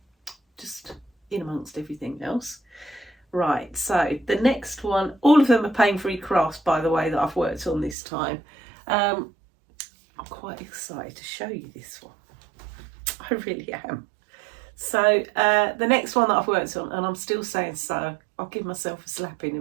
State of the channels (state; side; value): drops out; left; at 8.0 s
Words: just in amongst everything else. Right, so the next one, all of them are Pain Free Crafts, by the way, that I've worked on this time. I'm quite excited to show you this one. I really am. So the next one that I've worked on, and I'm still saying so, I'll give myself a slap in a